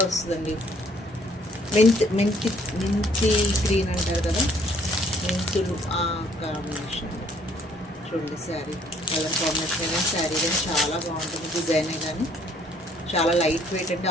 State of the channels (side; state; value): both; normal; correlation 0.63